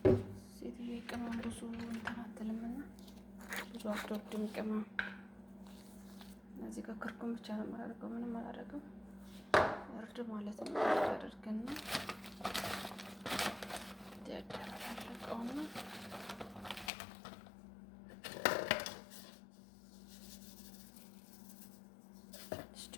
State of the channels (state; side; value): drops out; right; at 16.9 s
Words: ሴትዬ ቅመም ብዙ እንትን አትልምና ብዙ አትወድም ቅመም። እዚህ ጋር ክርኩም ብቻ ነው የማደርገው፣ ምንም አላደርግም። እርድ ማለት ነው። እርድ አድርገና ያደረቀውና ትንሽ